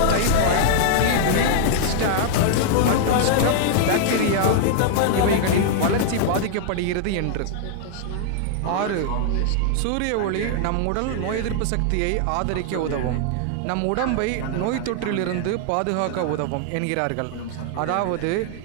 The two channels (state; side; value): different; both; correlation -0.01